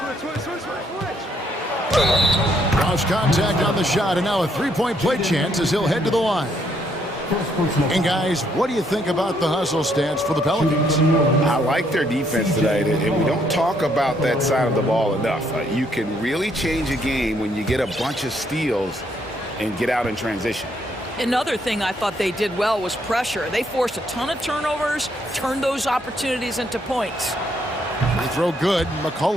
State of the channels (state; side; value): normal; both; correlation 0.71